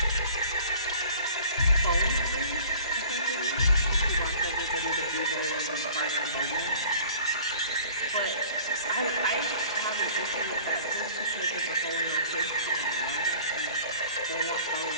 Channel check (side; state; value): both; inverted; correlation -0.48